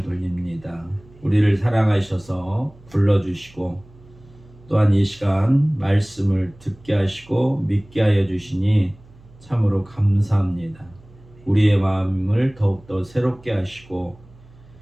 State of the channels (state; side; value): noise; right; hum, 25 dB below the sound